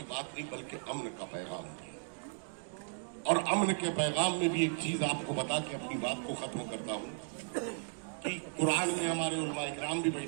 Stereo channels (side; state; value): left; silent; digital silence